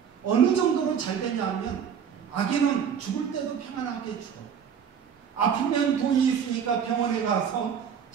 어느 정도로 잘 되냐 하면 악인은 죽을 때도 평안하게 죽어. 아프면 돈이 있으니까 병원에 가서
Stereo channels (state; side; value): quieter; left; 7.6 dB